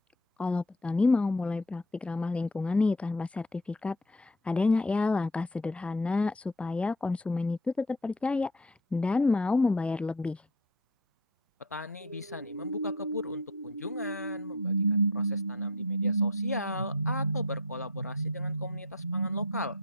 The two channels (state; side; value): normal; both; correlation 0.38